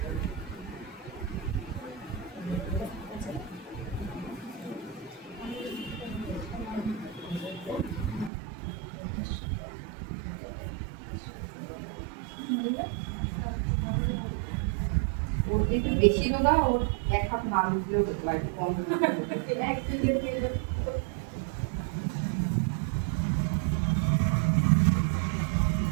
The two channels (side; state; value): left; drops out; at 8.3 s